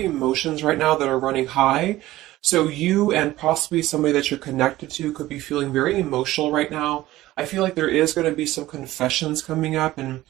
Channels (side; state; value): left; quieter; 16.3 dB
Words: right now that are running high. So you and possibly somebody that you're connected to could be feeling very emotional right now. I feel like there is going to be some confessions coming up, and